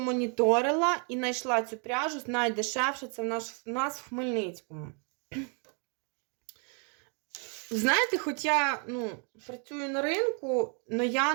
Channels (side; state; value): left; quieter; 38.6 dB